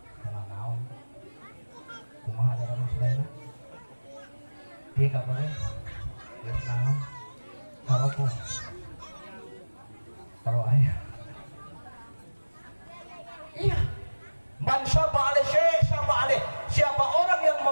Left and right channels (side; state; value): both; inverted; correlation -1.00